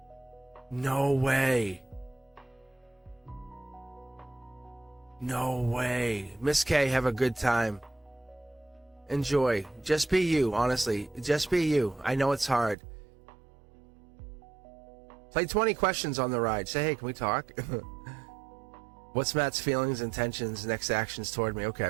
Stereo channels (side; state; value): left; drops out; at 12.8 s